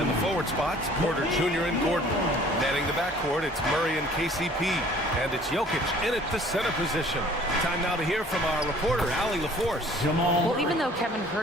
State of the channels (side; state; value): both; normal; correlation 0.53